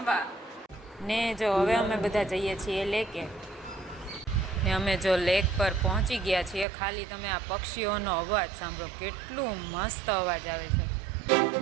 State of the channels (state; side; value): drops out; left; at 6.7 s